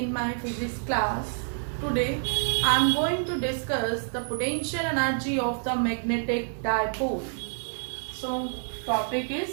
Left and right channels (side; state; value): left; silent; digital silence